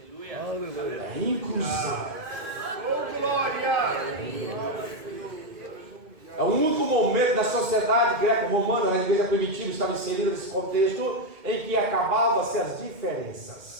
É inclusão. É o único momento da sociedade greco-romana, na igreja primitiva, estava inserida nesse contexto em que acabavam-se as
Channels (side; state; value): left; late; 2.1 ms